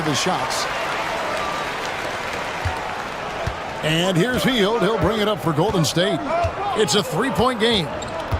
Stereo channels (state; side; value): identical; both; correlation 1.00